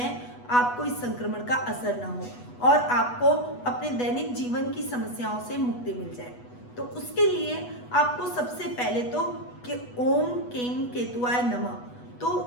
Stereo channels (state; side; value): late; right; 8.2 ms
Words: आपको इस संक्रमण का असर ना हो और आपको अपने दैनिक जीवन की समस्याओं से मुक्ति मिल जाए? तो उसके लिए आपको सबसे पहले तो कि ओम केम केतुआय नमः,